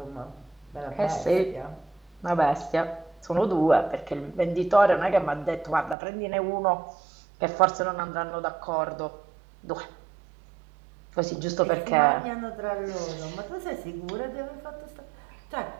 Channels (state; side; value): drops out; left; at 6.0 s